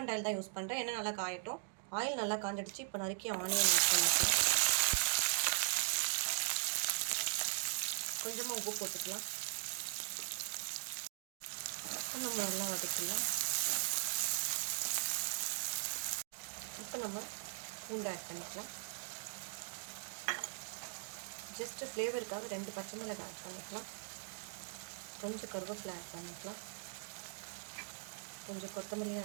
ஆயில் தான் யூஸ் பண்ணுறேன். எண்ணெய் நல்லா காயட்டும். ஆயில் நல்லா காஞ்சிடுச்சு. இப்போ நறுக்கி ஆனியன் ஆட் பண்ணிக்கலாம். கொஞ்சமாக உப்பு போட்டுக்கலாம். இப்போ நம்ம நல்லா வதக்கிடலாம். இப்போ நம்ம பூண்டு ஆட் பண்ணிக்கலாம். ஜஸ்ட்டு ஃப்ளேவருக்காக 2 பச்சை மிளகாய் ஆட் பண்ணிக்கலாம். கொஞ்சம் கருவேப்பிலை ஆட் பண்ணிக்கலாம். கொஞ்சம் கொத்தமல்லியும்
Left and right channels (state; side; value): silent; left; digital silence